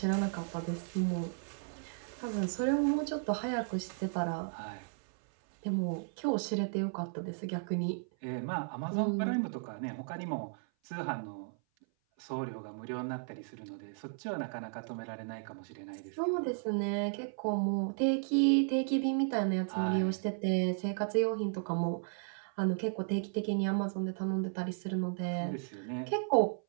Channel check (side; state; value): left; silent; 55 dB below the other